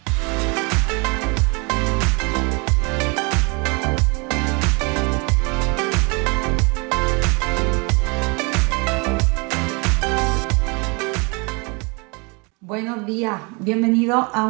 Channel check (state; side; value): quieter; left; 31.0 dB